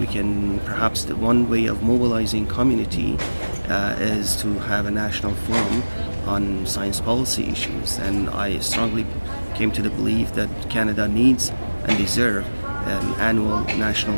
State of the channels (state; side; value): inverted; both; correlation -1.00